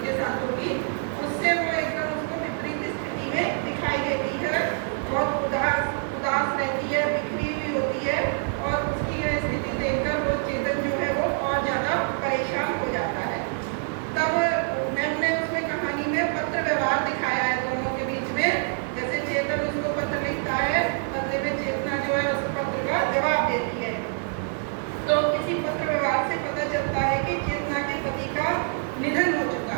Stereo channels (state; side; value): silent; left; 56 dB below the other